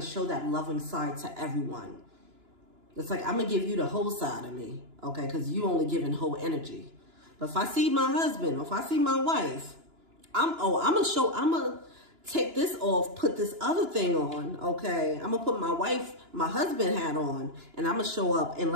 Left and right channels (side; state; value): left; late; 2.9 ms